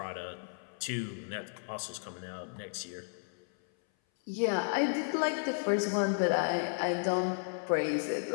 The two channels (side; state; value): right; silent; 55 dB below the other